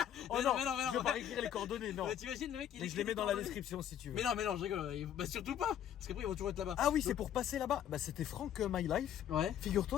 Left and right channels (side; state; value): right; quieter; 10.1 dB